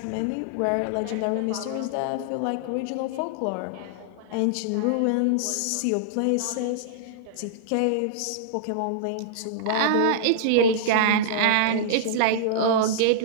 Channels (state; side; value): different; both; correlation -0.01